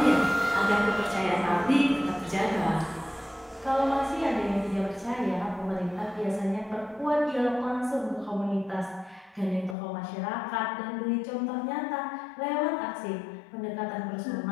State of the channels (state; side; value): drops out; right; at 9.8 s